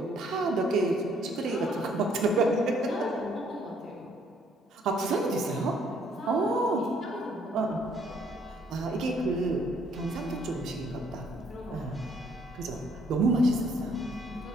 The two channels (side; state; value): both; normal; correlation 0.65